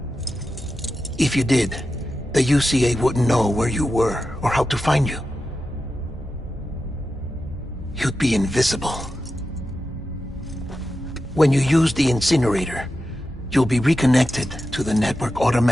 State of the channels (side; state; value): both; normal; correlation 0.91